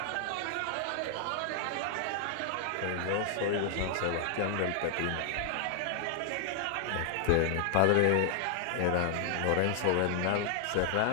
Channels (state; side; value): different; both; correlation 0.00